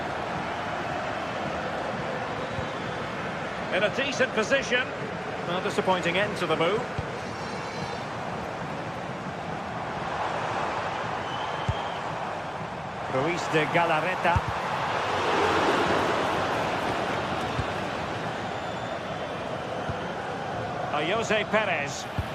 In a decent position. A disappointing end to the move. Luis de Galarreta. Jose Perez.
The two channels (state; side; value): identical; both; correlation 1.00